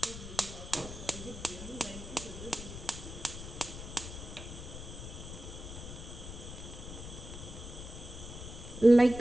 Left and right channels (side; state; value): left; noise; rumble, 10 dB below the sound